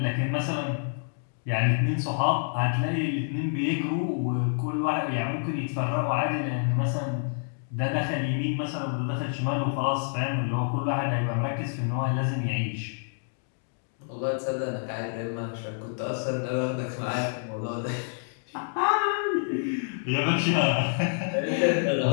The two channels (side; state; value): right; silent; digital silence